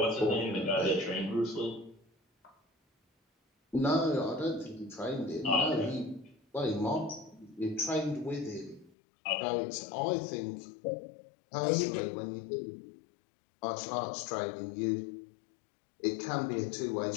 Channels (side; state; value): right; drops out; at 8.9 s